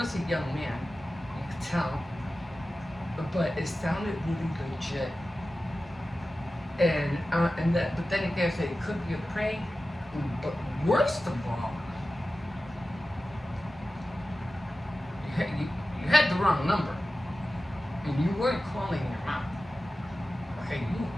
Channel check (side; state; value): both; normal; correlation 0.95